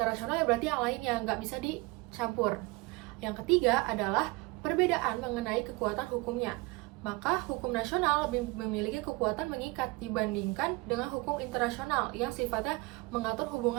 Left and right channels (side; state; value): left; quieter; 24.7 dB